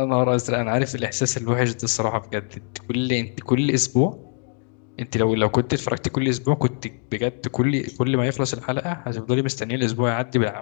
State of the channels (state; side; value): quieter; right; 39.9 dB